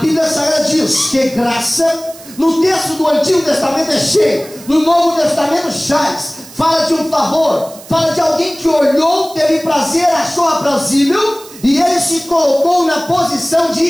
Sagrada diz que graça, no texto do Antigo Testamento é cheio, no Novo Testamento chaz, fala de um favor, fala de alguém que olhou, teve prazer, achou aprazível, e ele se colocou na posição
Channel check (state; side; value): noise; right; hiss, 19 dB below the sound